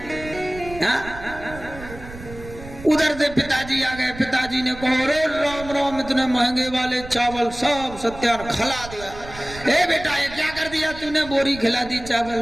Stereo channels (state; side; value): noise; right; rumble, 15 dB below the sound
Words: हाँ? उधर से पिताजी आ गए। पिताजी ने कहा अरे राम राम, इतने महंगे वाले चावल सब सत्यान खिला दिया। ए बेटा ये क्या कर दिया तूने, बोरी खिला दी